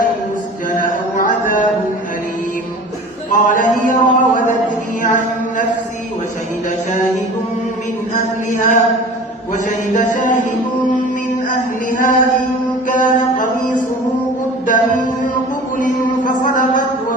أن يسجن أو عذاب أليم قال هي راودتني عن نفسي وشهد شاهد من أهلها إن كان قميصه قد من قبل فصدقت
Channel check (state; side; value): normal; both; correlation 0.40